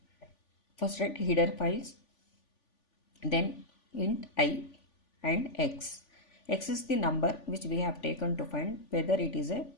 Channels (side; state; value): right; late; 3.5 ms